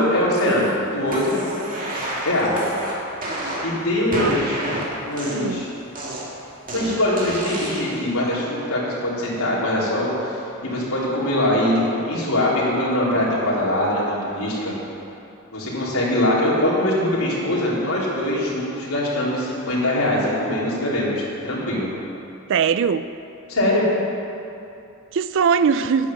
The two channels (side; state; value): both; normal; correlation 0.05